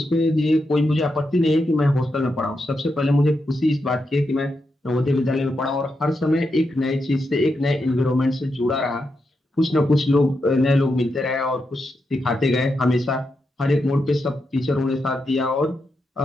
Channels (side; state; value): both; normal; correlation 0.85